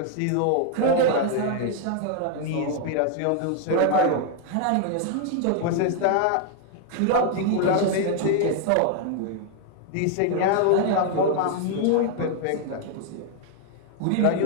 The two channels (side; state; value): both; different; correlation 0.00